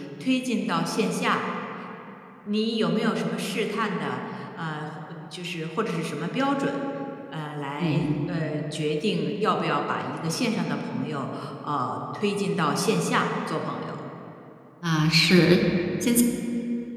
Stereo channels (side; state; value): both; identical; correlation 1.00